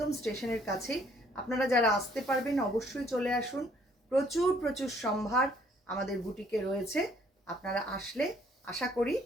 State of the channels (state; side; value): normal; both; correlation 0.63